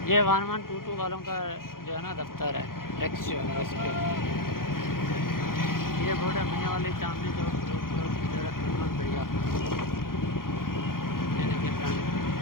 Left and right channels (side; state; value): right; late; 0.91 ms